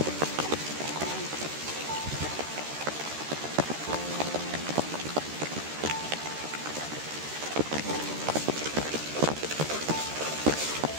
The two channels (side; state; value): left; late; 13 ms